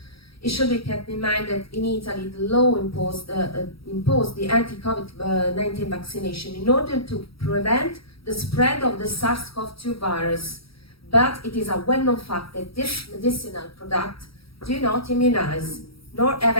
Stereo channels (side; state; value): right; late; 0.75 ms